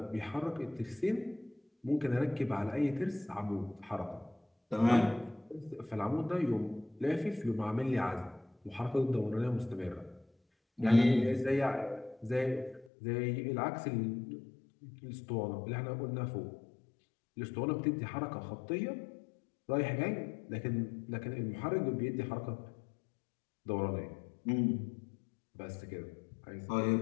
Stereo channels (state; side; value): drops out; right; at 12.9 s